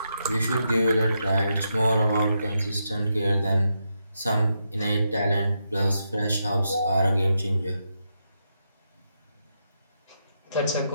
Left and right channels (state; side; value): inverted; both; correlation -0.83